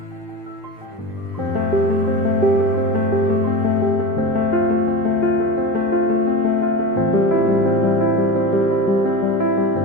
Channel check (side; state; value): both; normal; correlation 0.25